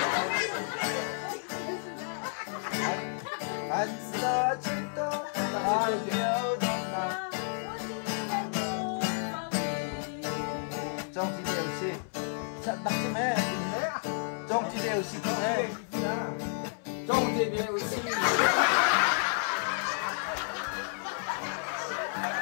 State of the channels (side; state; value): right; silent; 57 dB below the other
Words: anh sẽ chỉ tôi trong thì đều xì chắc đặt cho mẹ trong thì đều xì cho mẹ trong thì đều xì